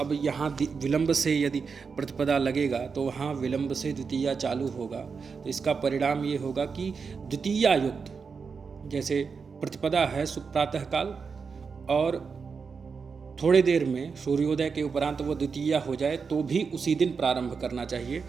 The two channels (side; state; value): left; quieter; 5.4 dB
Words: यहाँ विलंब से यदि प्रतिपदा लगेगा तो वहाँ विलंब से द्वितीया चालू होगा, तो इसका परिणाम ये होगा कि द्वितीया युक्त, जैसे प्रतिपदा है प्रातः काल और थोड़ी देर में सूर्योदय के उपरांत वो द्वितीया हो जाए तो भी उसी दिन प्रारंभ करना चाहिए,